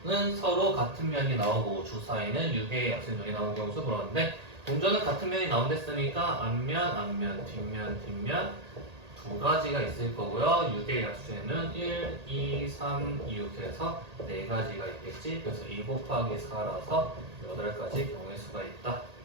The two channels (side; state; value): left; late; 1.8 ms